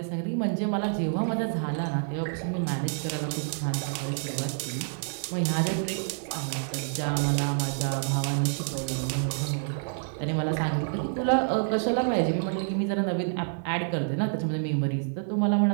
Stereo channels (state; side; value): silent; left; 59 dB below the other